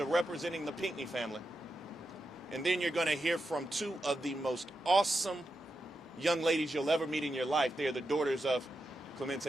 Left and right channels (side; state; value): both; normal; correlation 0.88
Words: representing the Pinckney family. And then you're going to hear from 2 of the most awesome young ladies you'll ever meet in your life. They are the daughters of